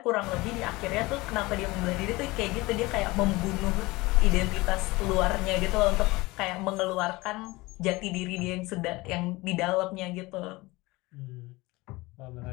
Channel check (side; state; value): right; quieter; 21.8 dB